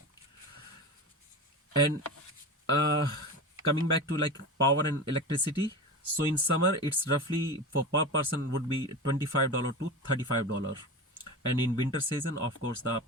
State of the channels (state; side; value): normal; both; correlation 0.26